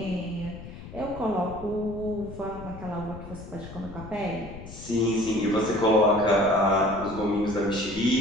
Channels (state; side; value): noise; left; rumble, 13 dB below the sound